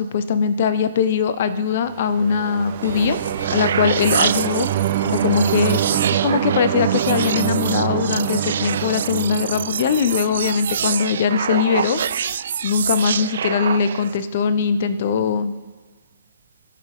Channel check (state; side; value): inverted; both; correlation -0.53